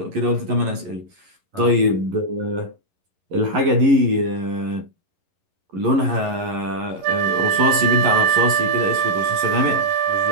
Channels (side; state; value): left; late; 11 ms